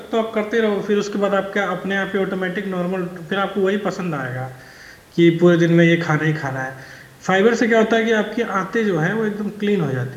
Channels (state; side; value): identical; both; correlation 1.00